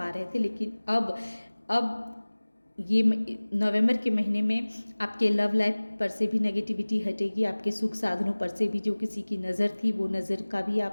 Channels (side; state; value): both; inverted; correlation -1.00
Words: रहे थे। लेकिन अब ये नवंबर के महीने में आपके लव लाइफ पर से भी नेगेटिविटी हटेगी, आपके सुख साधनों पर से भी जो किसी की नज़र थी वो नज़र का भी